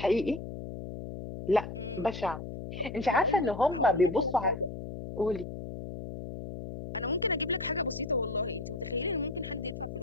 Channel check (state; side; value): noise; left; hum, 9 dB below the sound